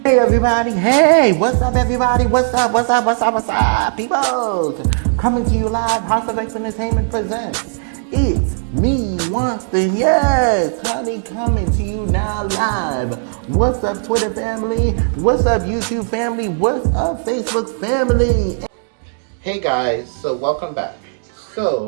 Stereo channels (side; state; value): left; silent; 68 dB below the other